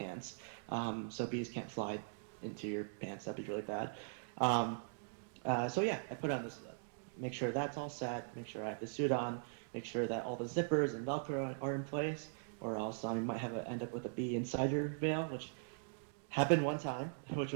so bees can't fly into your pants. That'd be really bad. Um, so yeah, I put on this, make sure that's all set, make sure I have the suit on, make sure that all the zippers and Velcro are in place, or else you might end up with a bee inside your veil, which happened one time, which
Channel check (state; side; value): silent; left; digital silence